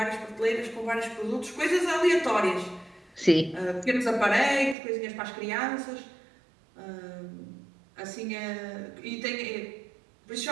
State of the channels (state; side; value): drops out; left; at 4.8 s